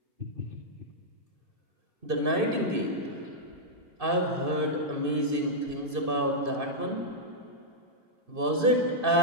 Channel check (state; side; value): late; left; 2.6 ms